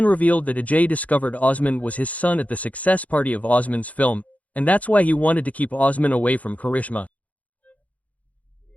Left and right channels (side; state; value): right; late; 0.070 ms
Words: revealed that Ajay discovered Osman was his son at the success party of Osman's film, and that's why he wanted to keep Osman away from Karishma.